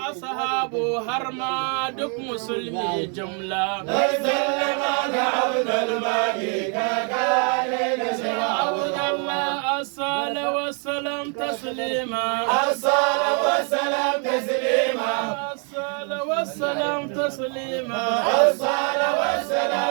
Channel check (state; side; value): quieter; left; 39.2 dB